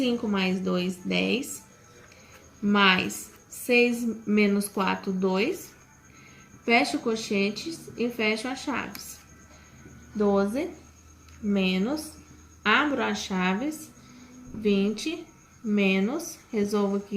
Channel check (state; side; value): identical; both; correlation 1.00